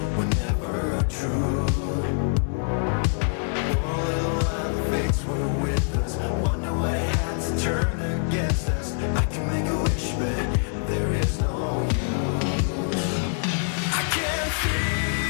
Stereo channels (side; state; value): right; silent; 62 dB below the other